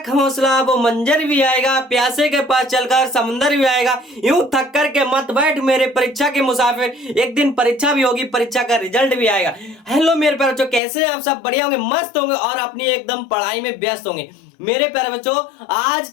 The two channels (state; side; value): drops out; right; at 10.8 s